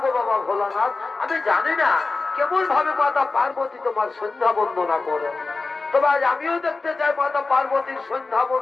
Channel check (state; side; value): quieter; right; 3.8 dB